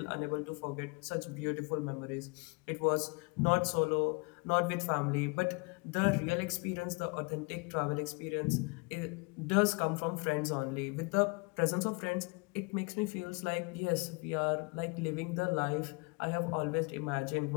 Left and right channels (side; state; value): right; quieter; 30.3 dB